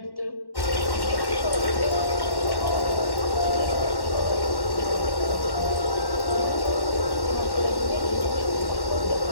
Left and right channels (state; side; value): late; right; 1.1 ms